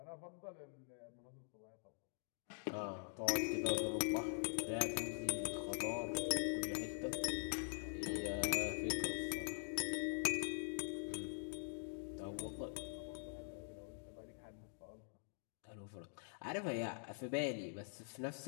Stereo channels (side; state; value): right; silent; digital silence